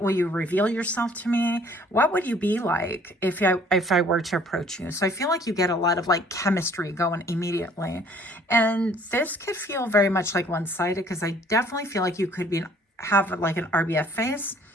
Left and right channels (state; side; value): normal; both; correlation 0.57